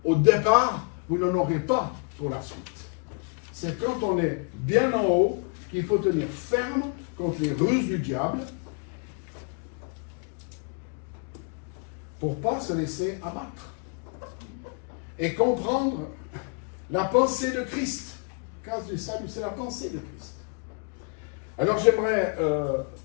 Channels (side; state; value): right; quieter; 39.2 dB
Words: au départ, vous n'en aurez pas pour la suite. C'est quand on est bien en haut qu'il faut tenir ferme contre les ruses du diable pour ne pas se laisser abattre. et comprendre la pensée de Christ. Cause du salut, c'est la pensée de Christ. Alors j'aimerais